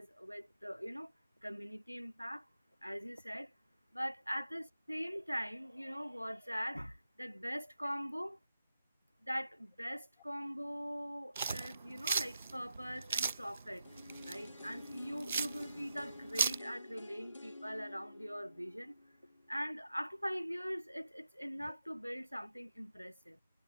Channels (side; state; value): both; inverted; correlation -0.89